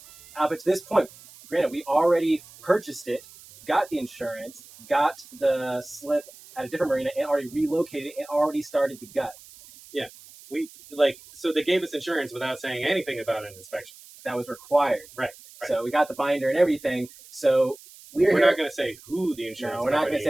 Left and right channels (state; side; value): noise; right; hiss, 21 dB below the sound